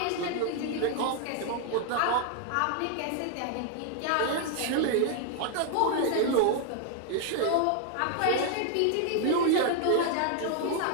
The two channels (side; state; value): both; different; correlation 0.00